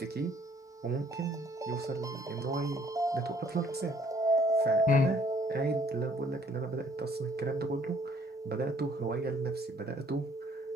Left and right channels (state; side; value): normal; both; correlation 0.61